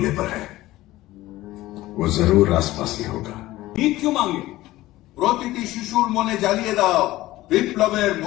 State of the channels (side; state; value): right; quieter; 16.9 dB